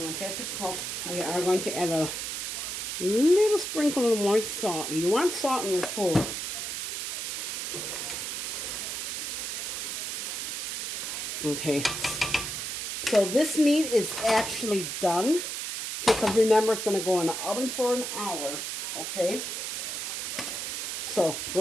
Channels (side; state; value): right; noise; hiss, 3 dB below the sound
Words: want that to cook. We are going to add a little sprinkle of more salt. You want salt in your food. Okay. So this meat is actually done. Because remember, it's going to go in the oven for an hour. Okay. So